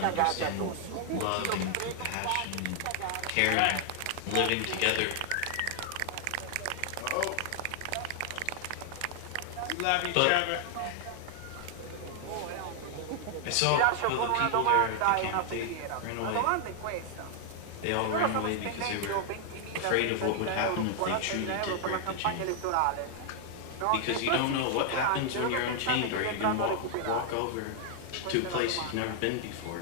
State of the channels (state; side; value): different; both; correlation 0.00